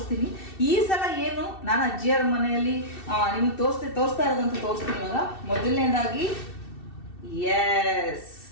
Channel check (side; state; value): right; late; 2.7 ms